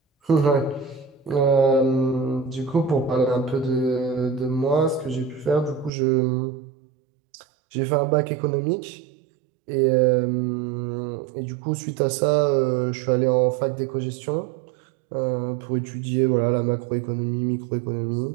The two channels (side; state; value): left; drops out; at 5.9 s